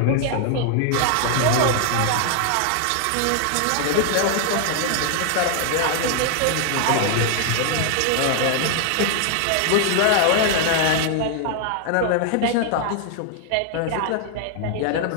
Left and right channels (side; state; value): both; different; correlation 0.00